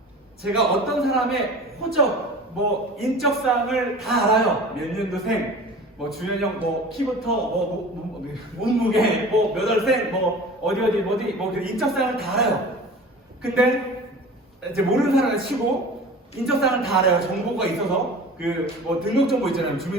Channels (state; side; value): normal; both; correlation 0.39